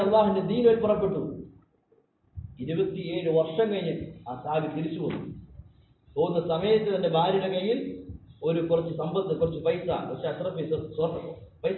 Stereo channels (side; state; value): both; identical; correlation 1.00